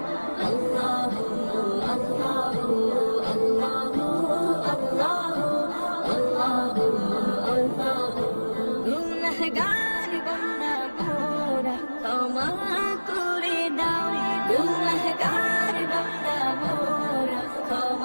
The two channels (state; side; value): inverted; both; correlation -1.00